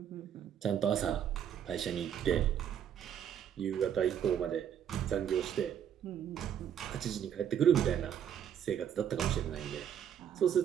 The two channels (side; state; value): left; quieter; 9.1 dB